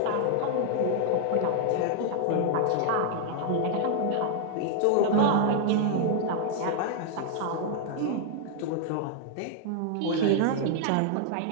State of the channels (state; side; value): different; both; correlation -0.01